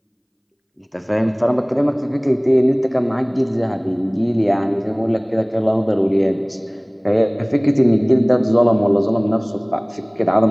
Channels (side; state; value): both; identical; correlation 1.00